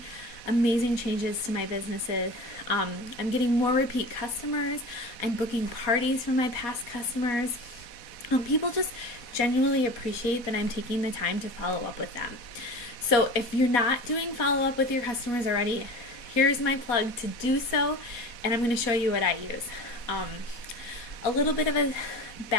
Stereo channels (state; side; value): late; right; 4.2 ms